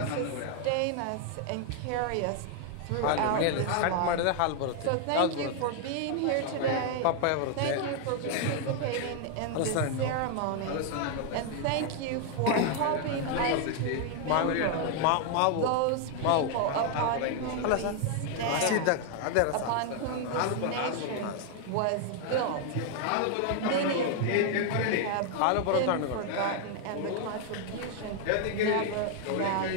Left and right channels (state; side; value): different; both; correlation 0.00